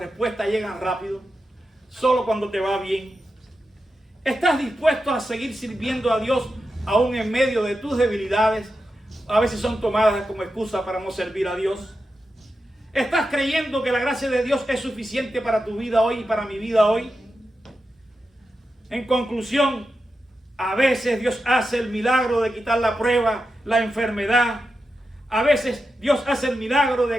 llegan rápido? ¿Solo cuando te va bien? ¿Estás dispuesto a seguir sirviendo a Dios aún en medio de tus debilidades? A veces son tomadas como excusa para no servir a Dios. ¿Estás creyendo que la gracia de Dios es suficiente para tu vida hoy y para mi vida hoy? En conclusión, a veces Dios hace el milagro de quitar la prueba, la enfermedad. A veces Dios hace el milagro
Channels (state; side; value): normal; both; correlation 0.89